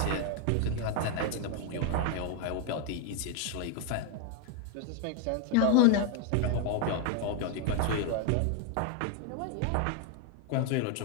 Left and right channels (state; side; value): different; both; correlation 0.01